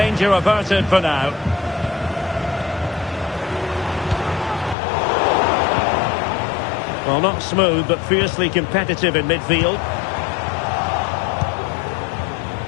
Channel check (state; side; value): drops out; right; at 4.8 s